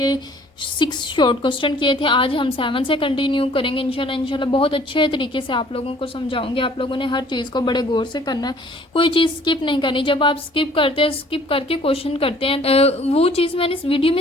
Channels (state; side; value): normal; both; correlation 0.55